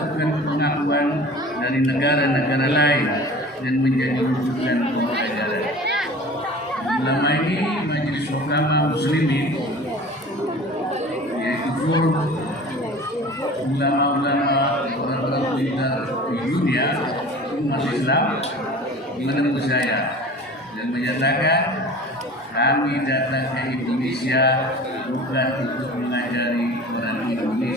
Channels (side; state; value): both; normal; correlation 0.41